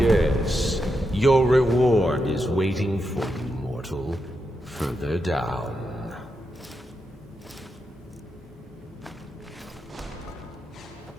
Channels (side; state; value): both; normal; correlation 0.85